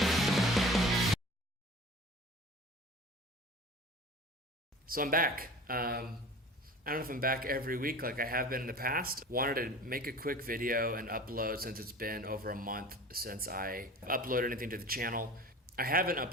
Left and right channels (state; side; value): normal; both; correlation 0.40